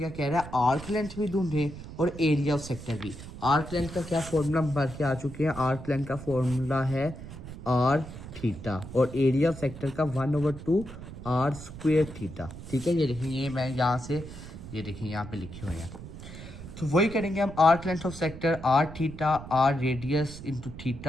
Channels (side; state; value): right; noise; rumble, 13 dB below the sound